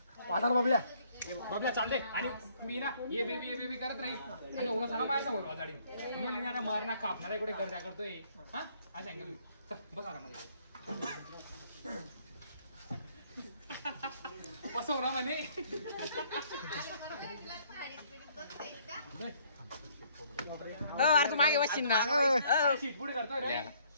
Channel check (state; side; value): inverted; both; correlation -0.63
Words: वाटार बबल्या बबल्या चालते. आणि मी ना ये बेबी करत राहील. आणि उगा झाला माझ्या समोर वाजाडी. तुम्ही मारणार कापणार कुठे गर्दा करतोय. हा आज सांगेल. बस आरामध्ये बसव ना म्हणे. तू मागे बसशील ना. पुढे करतोय रे.